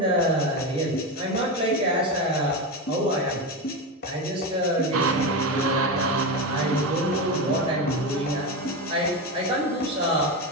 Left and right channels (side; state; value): both; normal; correlation 0.16